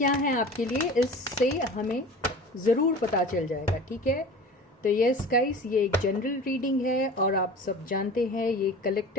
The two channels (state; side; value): normal; both; correlation 0.39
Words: हैं आपके लिए, इससे हमें ज़रूर पता चल जाएगा. ठीक है. तो यस गाइस, ये एक जनरल रीडिंग है और आप सब जानते हैं ये